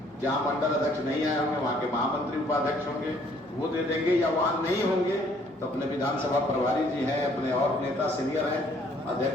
जहां मंडल अध्यक्ष नहीं आए होंगे वहां के महामंत्री उपाध्यक्ष होंगे, वो दे देंगे, या वहां नहीं होंगे तो अपने विधानसभा प्रभारी जी हैं, अपने और नेता सीनियर हैं,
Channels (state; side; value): normal; both; correlation 0.62